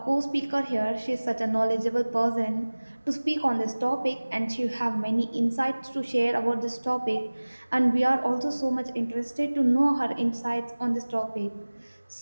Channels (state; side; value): inverted; both; correlation -1.00